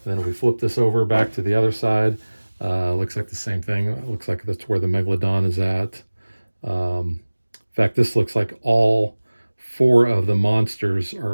then if we flip this over back to the other side, looks like the same thing. It looks like that's where the MacLeod is at. In fact, this looks like all 4 of the monsters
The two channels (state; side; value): inverted; both; correlation -1.00